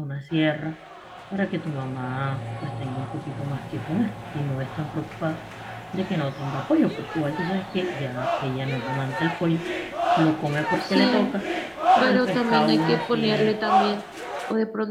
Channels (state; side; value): identical; both; correlation 1.00